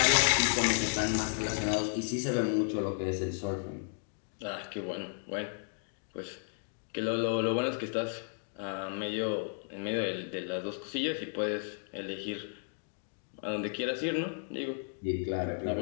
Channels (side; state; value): right; silent; digital silence